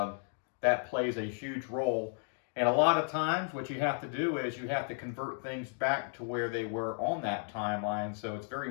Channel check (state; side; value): silent; right; 55 dB below the other